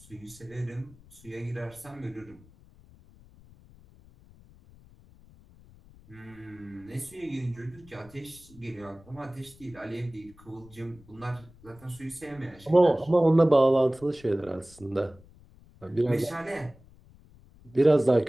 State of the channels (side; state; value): left; noise; rumble, 24 dB below the sound